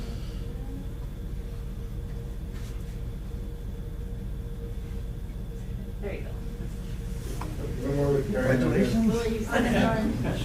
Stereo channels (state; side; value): identical; both; correlation 1.00